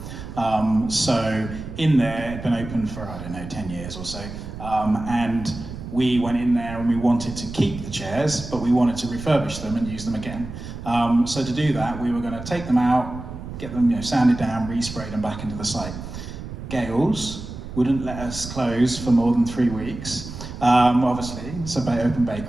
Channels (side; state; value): right; noise; rumble, 10 dB below the sound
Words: So in there, it'd been open for, I don't know, 10 years or so. And we went in there and we wanted to keep the chairs, but we wanted to refurbish them and use them again. So to do that, we were going to take them out, get them sanded down, resprayed them back into the site. GAILS wouldn't let us close for more than 3 weeks. Obviously, it's an open